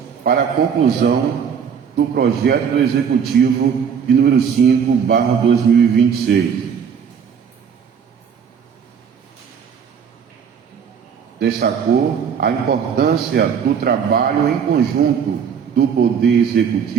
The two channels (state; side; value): quieter; left; 7.2 dB